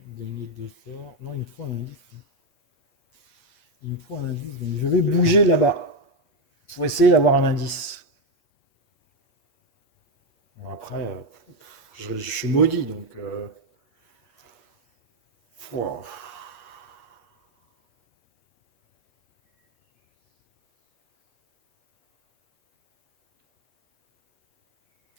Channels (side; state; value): right; late; 8.3 ms